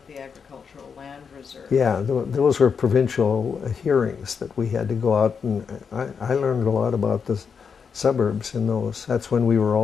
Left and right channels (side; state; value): right; quieter; 6.2 dB